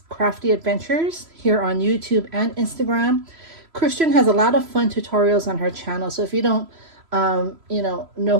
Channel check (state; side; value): late; left; 3.0 ms